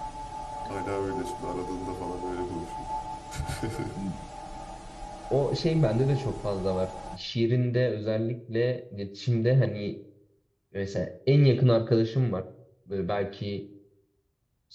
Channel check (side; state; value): both; identical; correlation 1.00